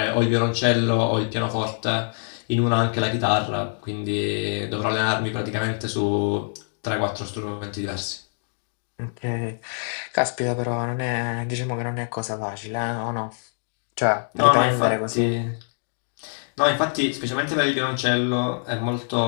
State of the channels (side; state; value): right; silent; digital silence